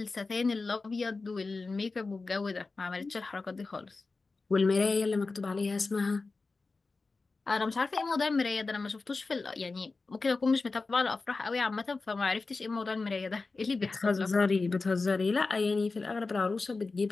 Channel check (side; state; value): right; quieter; 3.9 dB